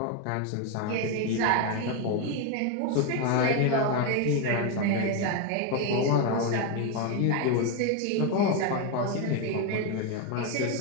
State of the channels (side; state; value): both; different; correlation 0.02